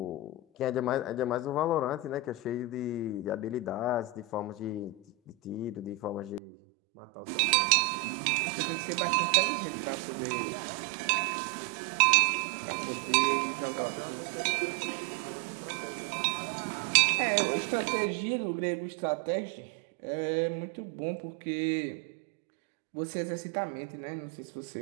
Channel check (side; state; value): left; drops out; at 6.4 s